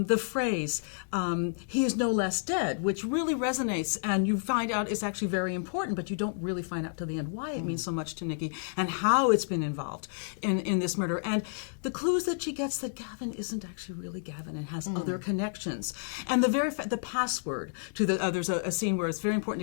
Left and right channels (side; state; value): right; silent; digital silence